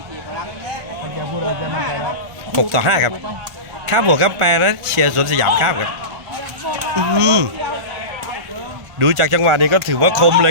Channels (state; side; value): late; left; 1.5 ms